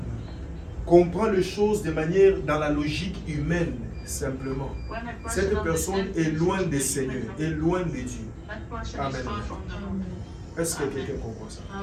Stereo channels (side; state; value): both; identical; correlation 1.00